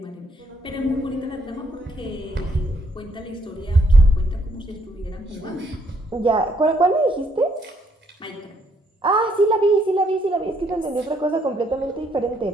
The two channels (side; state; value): both; normal; correlation 0.70